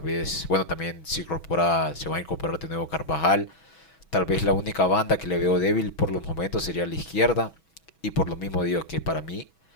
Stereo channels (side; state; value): right; late; 6.2 ms